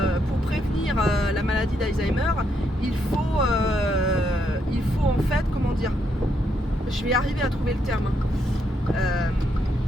prévenir la maladie d'Alzheimer, il faut en fait, je vais arriver à trouver le terme.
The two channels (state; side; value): normal; both; correlation 0.76